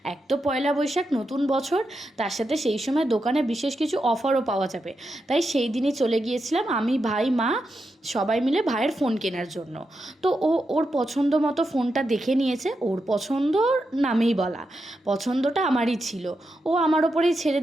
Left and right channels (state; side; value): normal; both; correlation 0.86